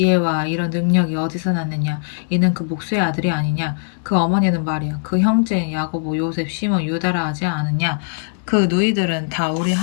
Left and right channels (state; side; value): silent; right; digital silence